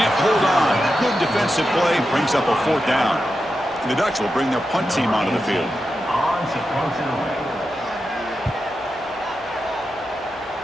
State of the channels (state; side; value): normal; both; correlation 0.89